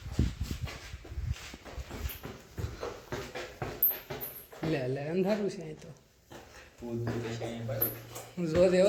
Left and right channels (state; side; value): identical; both; correlation 1.00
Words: લે લે અંધારું છે અહીં તો. જો